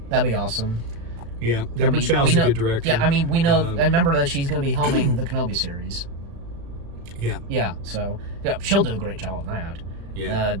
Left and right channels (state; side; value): late; left; 35 ms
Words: That'd be awesome. Yeah, Deborah Chow's a good director. Yeah, I mean, we know, and remember that she's going to be helming the Kenobi series. Yeah. Yeah, so, yeah, she'll do a great job on that. Yeah.